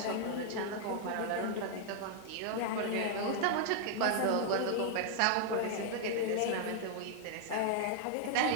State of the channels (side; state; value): both; different; correlation 0.00